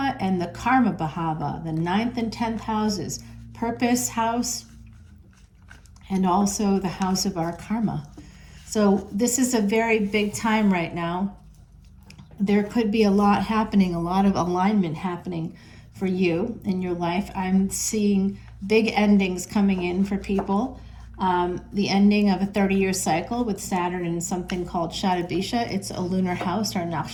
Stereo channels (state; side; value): identical; both; correlation 1.00